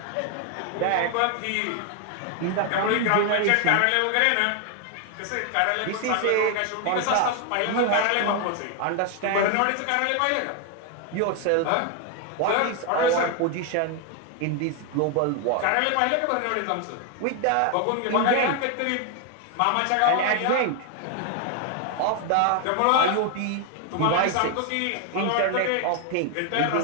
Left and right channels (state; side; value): different; both; correlation 0.01